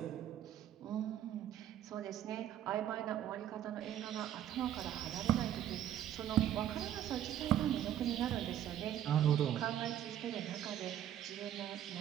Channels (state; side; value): quieter; left; 11.4 dB